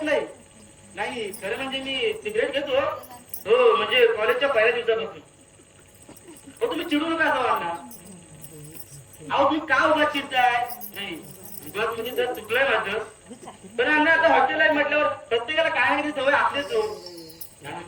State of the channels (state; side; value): identical; both; correlation 1.00